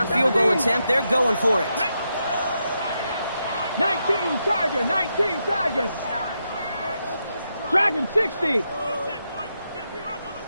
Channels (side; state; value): both; inverted; correlation -0.84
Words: field goal attempt, they're going for it. 19 Tiger, 19 Tigers. Dragon 60.